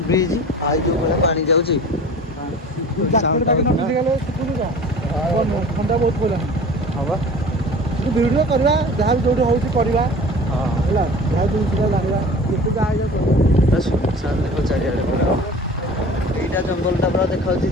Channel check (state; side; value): normal; both; correlation 0.41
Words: ब्रिज आई जो भाई पानी जाऊँगी ठंडा बहुत पड़ा हाँ बा भिडियो करवा जहाँ भी जो होगा जहाँ जिनसा जाना सुनसान देख चारिआड पूरा এইটা জঙ্গলটা পুরা দেখাচ্ছি